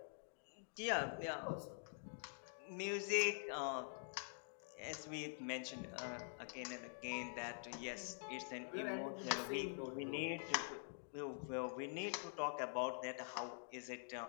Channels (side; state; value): right; silent; digital silence